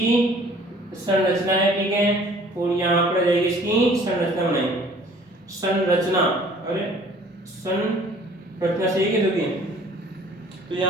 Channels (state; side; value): normal; both; correlation 0.53